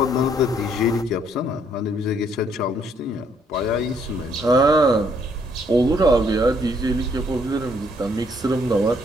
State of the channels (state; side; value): normal; both; correlation 0.68